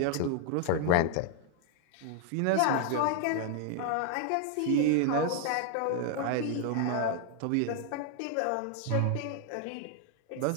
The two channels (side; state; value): both; different; correlation 0.00